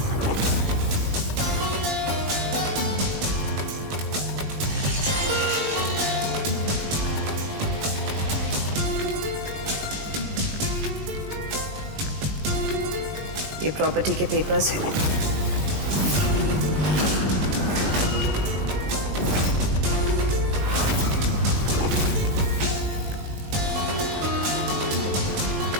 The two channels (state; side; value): late; left; 20 ms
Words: ये प्रॉपर्टी के पेपर्स हैं।